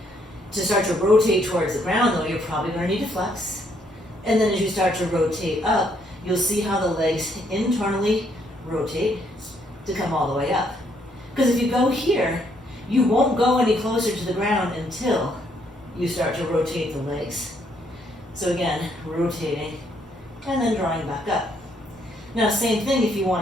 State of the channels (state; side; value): normal; both; correlation 0.71